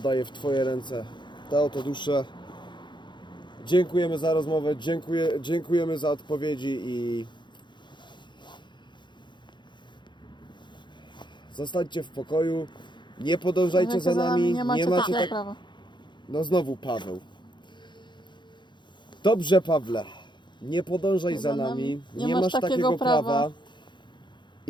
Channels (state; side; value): late; right; 0.22 ms